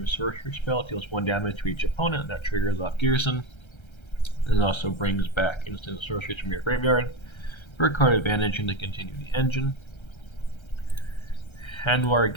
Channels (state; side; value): late; right; 1.3 ms